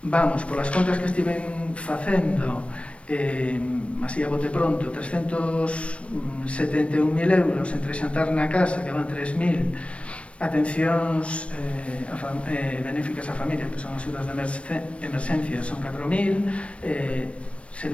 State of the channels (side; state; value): right; late; 0.061 ms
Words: vamos, polas contas que estiven facendo, así a bote pronto, 371.000 euros entre xantar na casa, que van 3.000, atencións benéficas á familia, que son axudas de emerxencia, son 4.000,